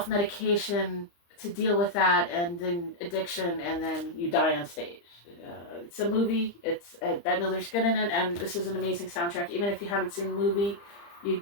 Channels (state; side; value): late; right; 35 ms